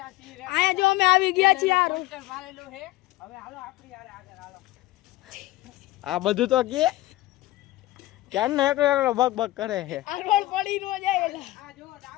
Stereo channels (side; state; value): right; quieter; 17.4 dB